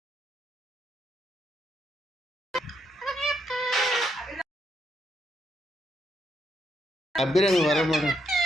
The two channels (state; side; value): normal; both; correlation 0.77